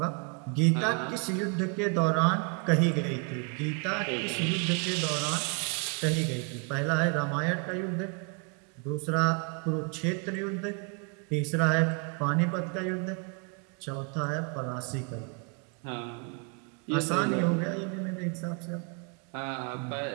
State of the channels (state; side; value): quieter; left; 34.3 dB